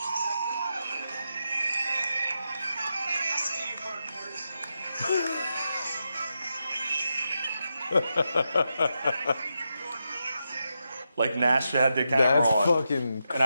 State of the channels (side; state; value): both; inverted; correlation -0.86